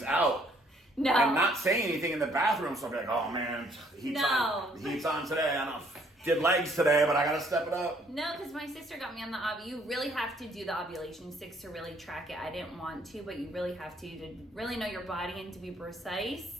out. No. And not saying anything in the bathroom. So I'd be like, oh man, heat's on today. I don't know. Did legs today, but I gotta step it up. No, because my sister got me on the you really have to do the ovulation sticks to really track it. I didn't want to, but you really have to really know your body and to be precise.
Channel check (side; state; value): both; normal; correlation 0.64